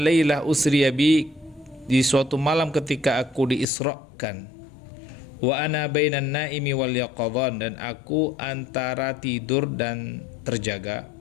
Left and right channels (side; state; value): right; drops out; at 3.7 s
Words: lailah usriya bi, di suatu malam ketika aku diisrakan, wa ana bainan naimi wal yaqadhan, dan aku antara tidur dan terjaga.